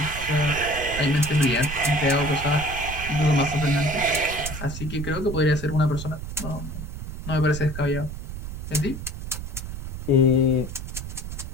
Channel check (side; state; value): right; noise; rumble, 8 dB below the sound